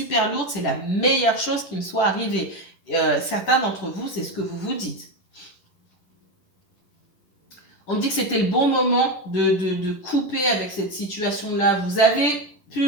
lourdes, c'est la meilleure chose qui me soit arrivée. Certains d'entre vous, c'est ce que vous vous dites. On me dit que c'était le bon moment de couper avec cette situation-là. Vous avez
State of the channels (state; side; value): late; right; 10 ms